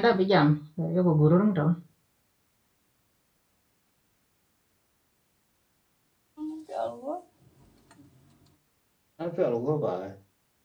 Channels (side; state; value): both; identical; correlation 1.00